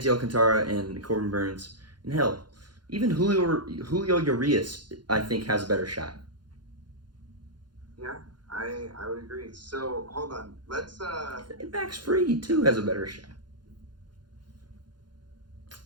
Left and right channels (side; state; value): left; late; 0.71 ms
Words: Alcantara and Corbin Burns, and hell, even Julio Urias, I think, has a better shot. Yeah, I would agree. So hold on, let's Max Fried too has a better shot.